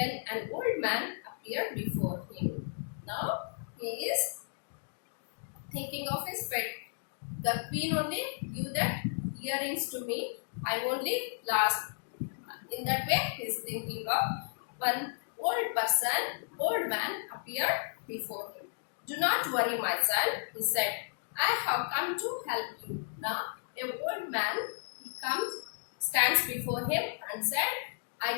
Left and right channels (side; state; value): right; silent; digital silence